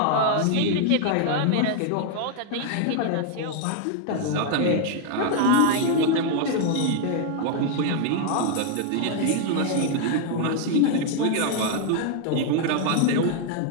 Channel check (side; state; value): both; different; correlation 0.00